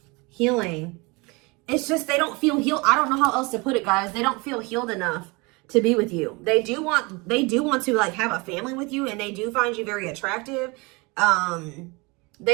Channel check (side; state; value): left; quieter; 26.7 dB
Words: Healing. It's just they don't feel healed. I don't know how else to put it, guys. They don't feel healed enough to be with you. They do want to like have a family with you, and they do find you very attractive.